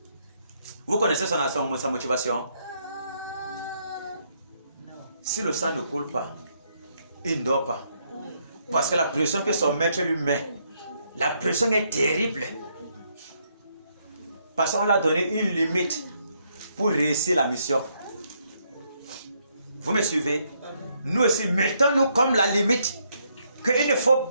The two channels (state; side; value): inverted; both; correlation -0.74